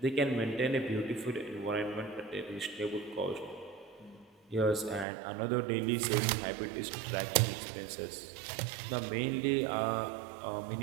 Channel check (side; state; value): left; drops out; at 5.1 s